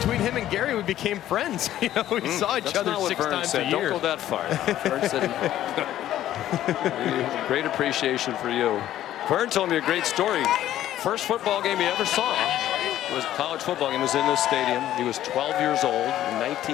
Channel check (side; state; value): right; quieter; 12.7 dB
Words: him and Gary, we became friends. You know, we saw each other 6 times a year. Don't go that far. Vern said, great appreciation for you. Vern told me a great story. First football game he ever saw was a college football game. It was in this stadium. He was 12 years old in